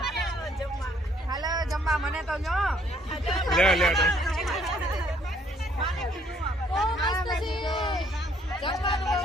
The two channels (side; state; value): both; normal; correlation 0.65